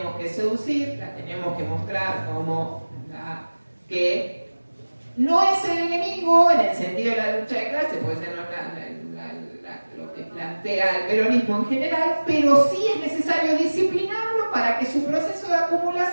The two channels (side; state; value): both; inverted; correlation -1.00